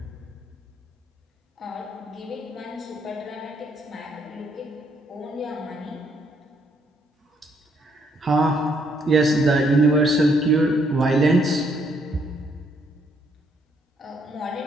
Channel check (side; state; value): both; normal; correlation 0.70